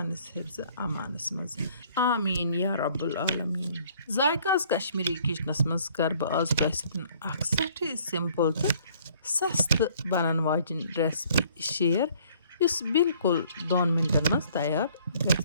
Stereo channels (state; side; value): inverted; both; correlation -0.59